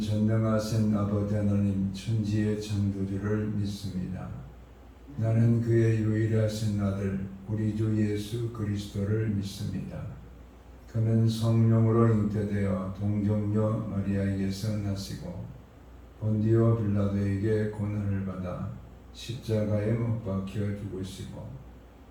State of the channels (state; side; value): identical; both; correlation 1.00